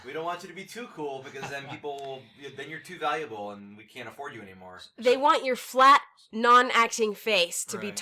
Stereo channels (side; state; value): both; identical; correlation 1.00